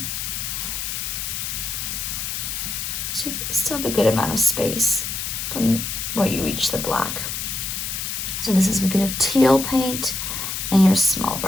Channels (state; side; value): noise; left; hiss, 3 dB below the sound